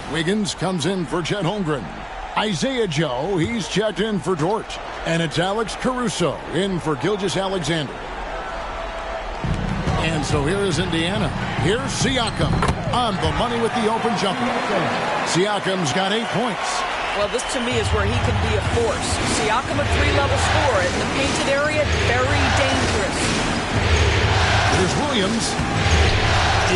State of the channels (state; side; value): identical; both; correlation 1.00